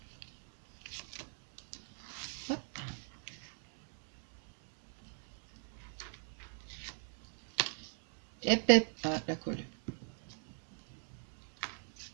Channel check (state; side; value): silent; left; 50 dB below the other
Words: Hop. Hep. Ah, la colle.